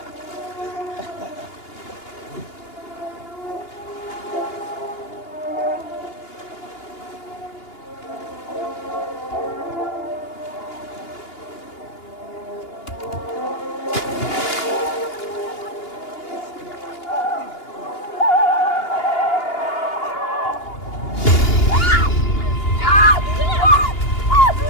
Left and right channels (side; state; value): right; late; 2.8 ms